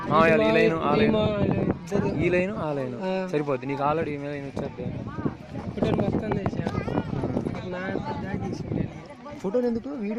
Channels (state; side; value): identical; both; correlation 1.00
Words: ఈ లైన్ ఆ లైన్ ఈ లైన్ ఆ లైన్ సరిపోద్ది నీకు. ఆల్రెడీ ఈ లైన్ వచ్చేద్ది. ఫోటోలు మొత్తం తీసా. ఫోటోలు ఎందుకు?